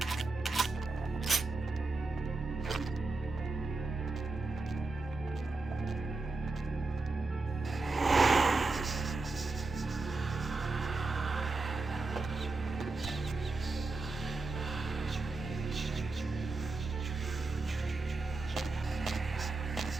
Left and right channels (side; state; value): left; quieter; 3.6 dB